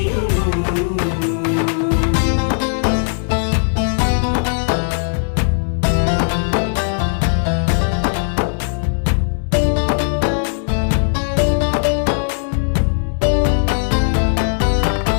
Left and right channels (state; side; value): silent; right; digital silence